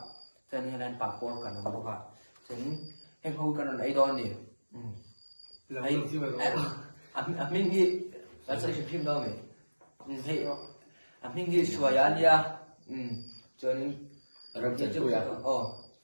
chân này papor kan bốc chân em không cần ấy đó đi ấy mình nghĩ là sẽ phim đâu mình thấy mình nghĩ xua ya lia cho nên làm chân phu ya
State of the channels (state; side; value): inverted; both; correlation -1.00